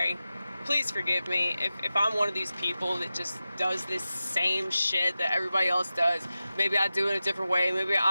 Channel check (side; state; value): both; inverted; correlation -0.94